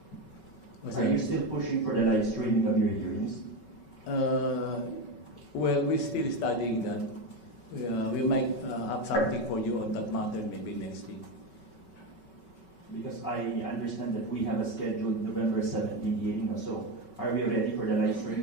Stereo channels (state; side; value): late; right; 5.3 ms